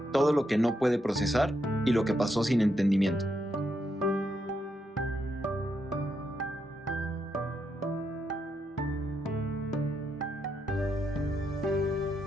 todo lo que no puede procesar y lo que pasó sin entendimiento.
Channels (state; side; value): normal; both; correlation 0.80